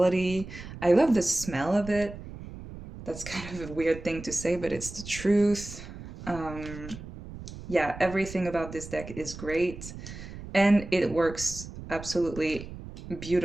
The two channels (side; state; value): right; noise; rumble, 12 dB below the sound